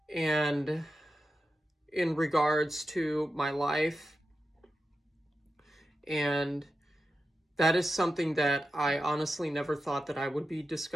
and in regards to my life. And that is something that I honestly never thought that I would be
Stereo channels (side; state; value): both; normal; correlation 0.90